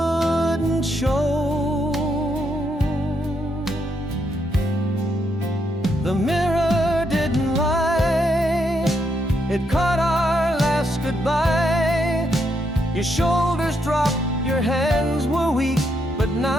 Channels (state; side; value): normal; both; correlation 0.78